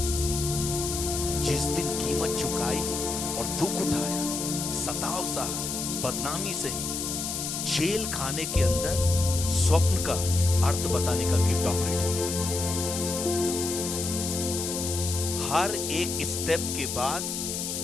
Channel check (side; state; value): left; noise; hiss, 3 dB below the sound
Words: जिस दिन कीमत चुकाई और दुख उठाया, सताव सहा, बदनामी सही, जेल खाने के अंदर स्वप्न का अर्थ बताने का गिफ्ट ऑपरेट हुआ। हर एक स्टेप के बाद